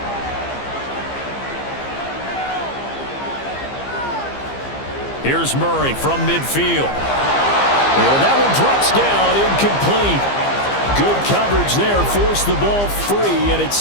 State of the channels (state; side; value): late; right; 15 ms